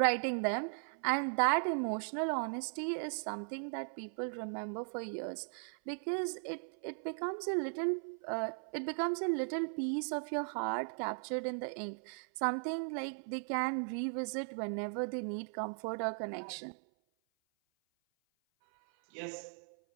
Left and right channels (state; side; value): silent; left; 53 dB below the other